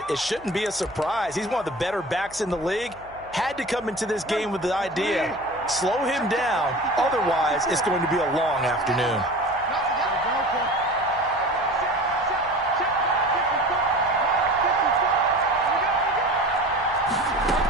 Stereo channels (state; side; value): noise; right; hum, 24 dB below the sound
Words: it shouldn't be a surprise. He's one of the better backs in the league. Had to come into this game with the idea, slow him down, otherwise it's going to be a long afternoon.